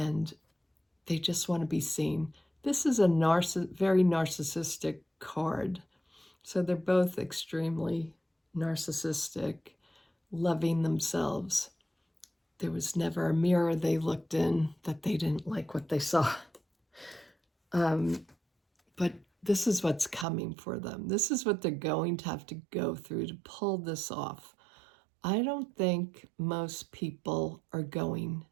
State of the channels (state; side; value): drops out; left; at 20.2 s